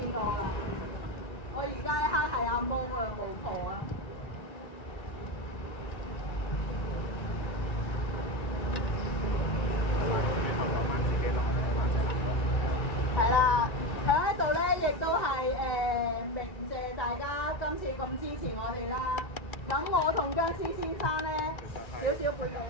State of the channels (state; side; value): late; right; 1.9 ms